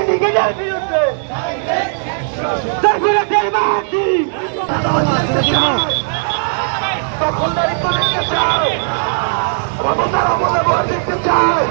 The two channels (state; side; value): silent; left; digital silence